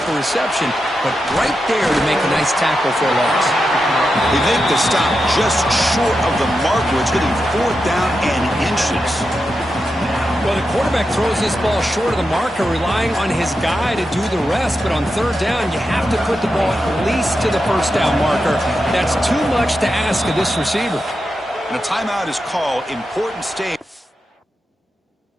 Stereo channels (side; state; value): both; normal; correlation 0.88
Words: a reception, but right there to make a nice tackle for a loss. They make the stop just short of the marker. It's getting 4th down and inches. Well, the quarterback throws this ball short of the marker, relying on his guy to do the rest. But on 3rd down, you have to put the ball at least to the first down marker. That's too much to ask of this receiver. And a timeout is called. Important stage.